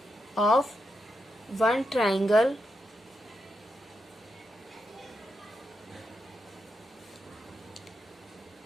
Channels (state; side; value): normal; both; correlation 0.85